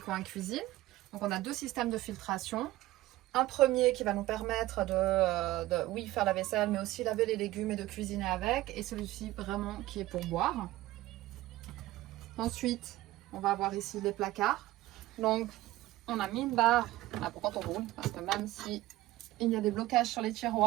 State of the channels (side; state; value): left; quieter; 16.9 dB